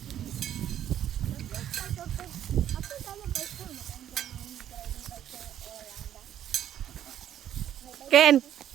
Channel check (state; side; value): quieter; left; 10.8 dB